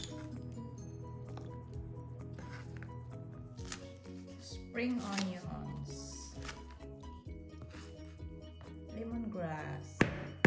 Spring onions, lemongrass,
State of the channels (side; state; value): both; identical; correlation 1.00